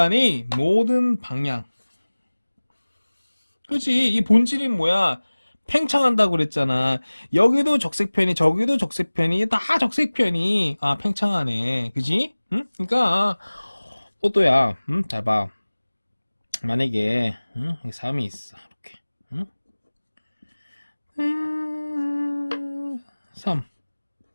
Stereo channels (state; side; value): inverted; both; correlation -1.00